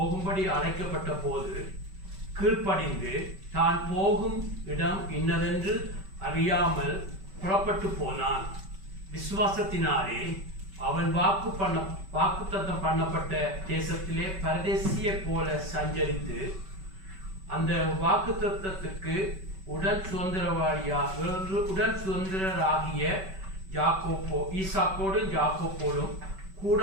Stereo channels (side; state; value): left; late; 5.2 ms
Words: அழைக்கப்பட்ட போது கீழ்ப்படிந்து தான் போகும் இடம் இன்னதென்று அறியாமல் புறப்பட்டு போனான். விசுவாசத்தினாலே அவன் வாக்குத்தத்தம் பண்ணப்பட்ட தேசத்திலே பரதேசிய போல சஞ்சரித்து அந்த வாக்குத்தத்தத்துக்கு உடன் சுதந்திரராகிய ஈசாக்கோடும் யாக்கோபோடும்